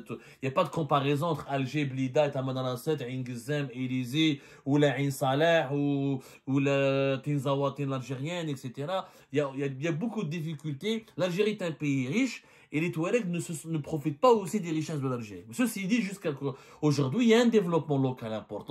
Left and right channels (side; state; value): both; identical; correlation 1.00